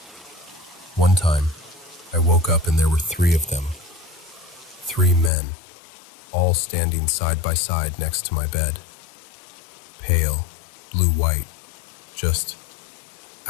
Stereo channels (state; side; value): drops out; right; at 5.3 s